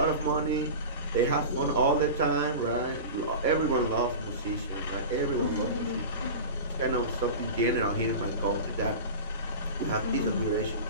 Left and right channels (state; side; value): inverted; both; correlation -0.30